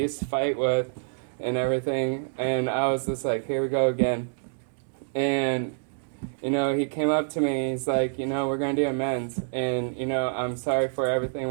to fight with and everything, and I was just like, here we go again. And, he came up to me, he's like, we're going to do amends, and, I'm sorry for everything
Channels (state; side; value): silent; left; digital silence